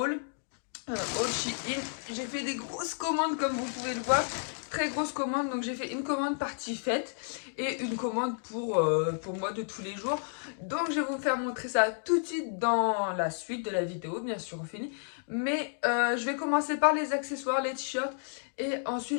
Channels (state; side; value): silent; right; digital silence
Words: All Shein. J'ai fait des grosses commandes comme vous pouvez le voir. Très grosses commandes. Donc j'ai fait une commande partie fête et une commande pour moi de tous les jours. Donc je vais vous faire montrer ça tout de suite dans la suite de la vidéo, bien sûr au fini. Mais je vais commencer par les accessoires, les t-shirts. Et